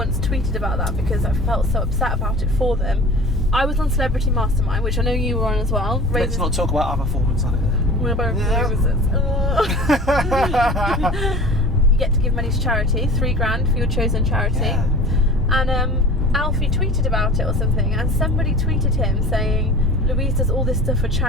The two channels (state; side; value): normal; both; correlation 0.40